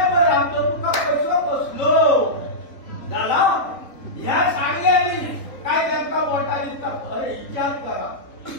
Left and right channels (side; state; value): right; late; 3.4 ms